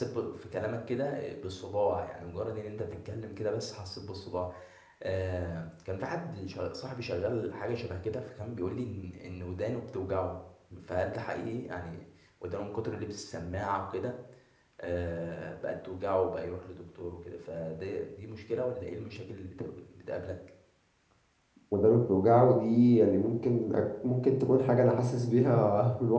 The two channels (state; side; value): identical; both; correlation 1.00